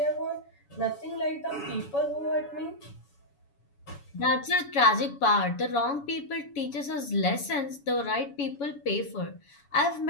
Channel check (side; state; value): right; late; 7.1 ms